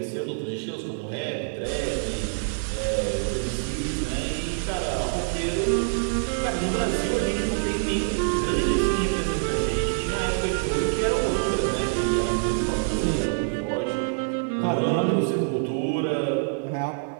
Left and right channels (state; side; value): silent; left; digital silence